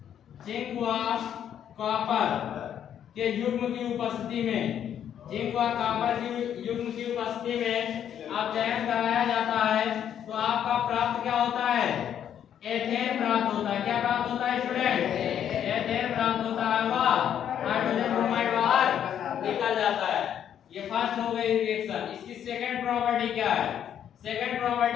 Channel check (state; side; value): quieter; right; 9.5 dB